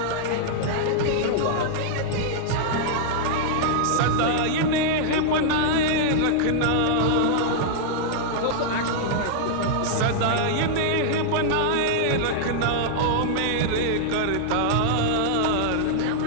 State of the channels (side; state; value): both; different; correlation -0.01